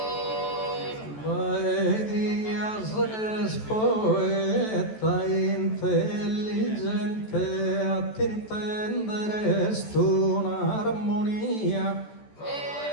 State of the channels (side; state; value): right; late; 14 ms